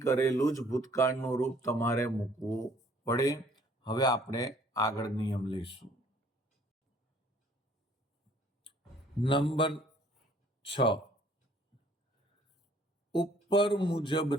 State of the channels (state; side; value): normal; both; correlation 0.59